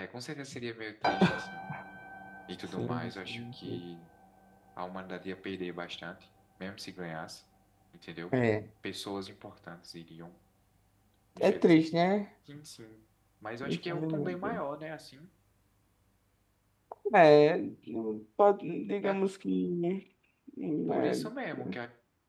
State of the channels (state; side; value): identical; both; correlation 1.00